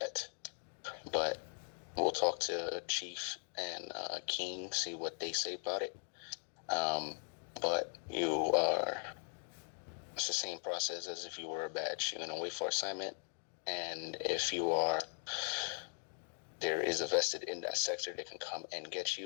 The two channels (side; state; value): right; silent; 51 dB below the other